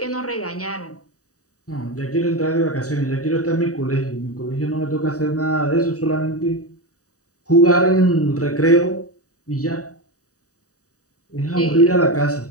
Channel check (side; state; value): right; late; 0.66 ms